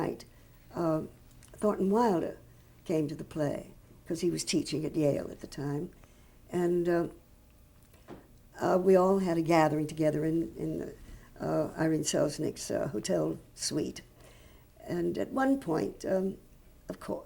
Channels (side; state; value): both; identical; correlation 1.00